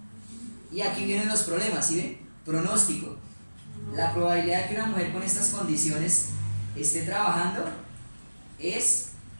y aquí vienen los problemas, ¿sí ven? Pronóstico. La probabilidad de que una mujer con estas condiciones esté trabajando es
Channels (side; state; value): both; inverted; correlation -1.00